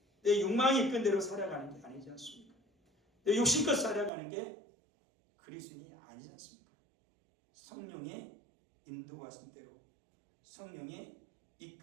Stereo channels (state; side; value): drops out; left; at 4.1 s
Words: 내 욕망이 이끄는 대로 살아가는 게 아니지 않습니까? 내 욕심껏 살아가는 게 그리스도인이 아니지 않습니까? 성령의 인도하신 대로 성령의